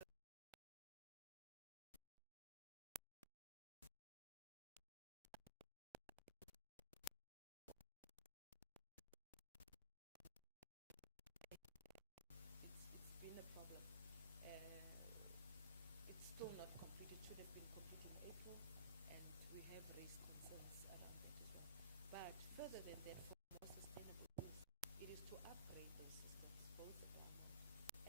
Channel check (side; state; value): both; inverted; correlation -0.44